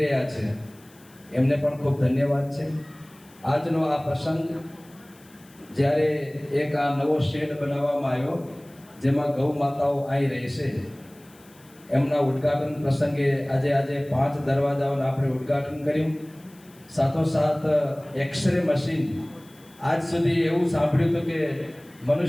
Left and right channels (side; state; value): left; noise; hiss, 27 dB below the sound